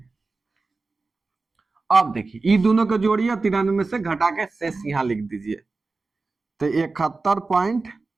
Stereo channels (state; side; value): quieter; left; 3.8 dB